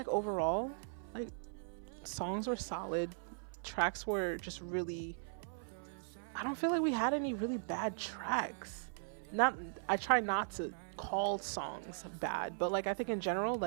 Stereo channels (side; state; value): left; silent; 52 dB below the other